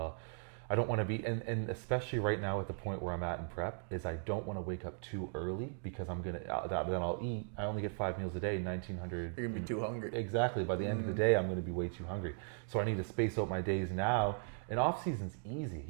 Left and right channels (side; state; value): left; silent; 53 dB below the other